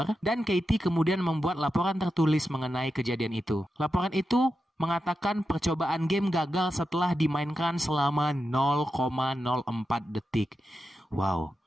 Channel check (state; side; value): normal; both; correlation 0.89